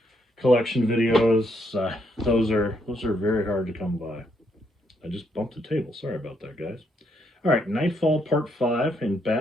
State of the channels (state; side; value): normal; both; correlation 0.75